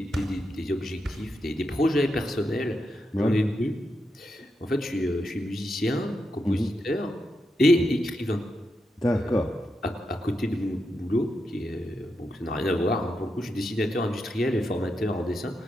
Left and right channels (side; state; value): both; normal; correlation 0.85